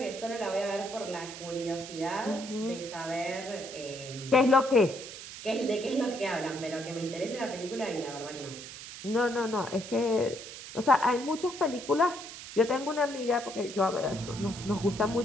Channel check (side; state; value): right; noise; hiss, 12 dB below the sound